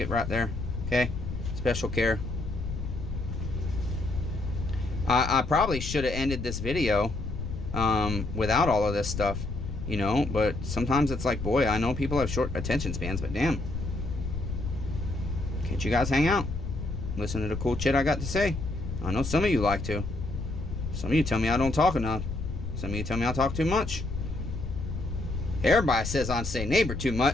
right there. Okay, special care. I probably should have ended this video without all of this stuff, you know, but sometimes it's like, boy, I know people have short attention spans, but damn, let you guys hang out. Listen to the cool shit I got to say. I know some of you like to. Some of you tell me I don't talk enough. Some of you tell me I talk too much. Everybody says I say neighbor too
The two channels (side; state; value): left; noise; rumble, 5 dB below the sound